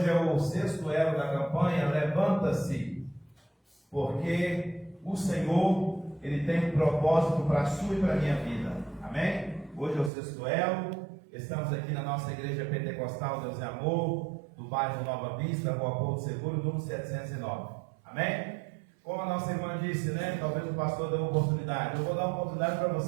é o 6º elo da campanha, levanta-se, porque o Senhor, Ele tem um propósito para a sua e para a minha vida, amém? Hoje é o 6º elo, estamos aqui na nossa igreja pentecostal Deus é Amor, do bairro Nova Vista, Rua Porto Seguro, número 709, amém? Como a nossa irmã disse, né? Talvez o pastor dê uma oportunidade. Eu vou dar uma oportunidade para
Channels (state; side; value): drops out; left; at 10.1 s